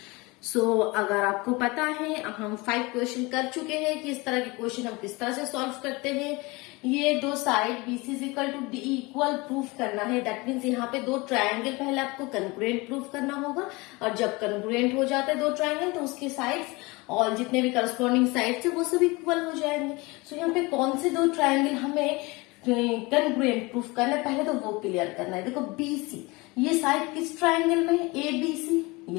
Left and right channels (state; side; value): quieter; right; 24.5 dB